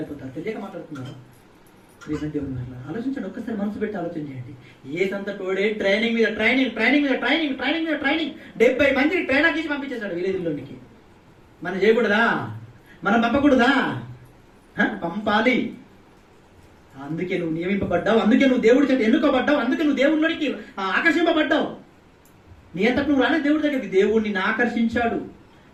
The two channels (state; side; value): identical; both; correlation 1.00